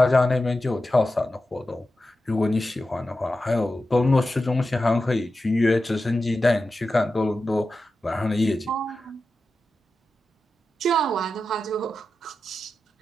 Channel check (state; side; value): normal; both; correlation 0.91